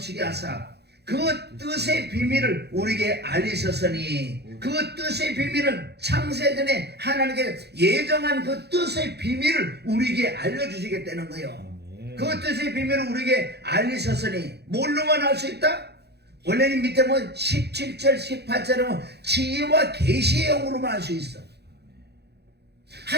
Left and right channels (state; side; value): late; left; 0.48 ms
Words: 하사 그 뜻의 비밀을 우리에게 알리셨으니 그 뜻의 비밀은 창세전에 하나님께 예정한 그 뜻의 비밀을 우리에게 알려주시겠다는 거예요. 그 뜻의 비밀을 우리에게 알리셨으니 뭘로만 알 수 있다? 원래는 밑에 뭐 17절 18절은 지혜와 계시의 영으로만 알 수 있어.